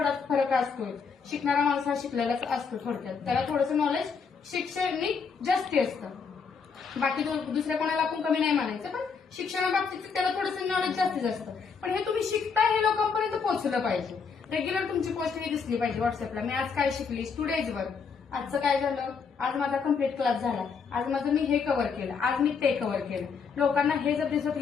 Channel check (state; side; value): quieter; right; 5.7 dB